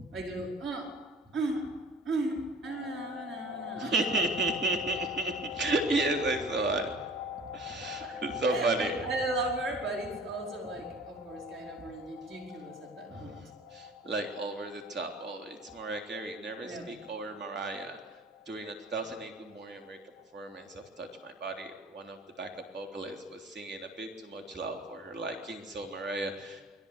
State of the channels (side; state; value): both; normal; correlation 0.45